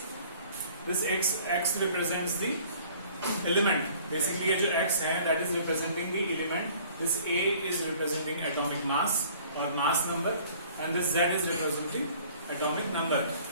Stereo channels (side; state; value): both; inverted; correlation -0.53